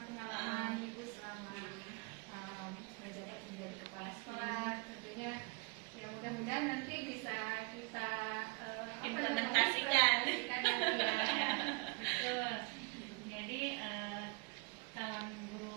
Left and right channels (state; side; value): quieter; left; 29.9 dB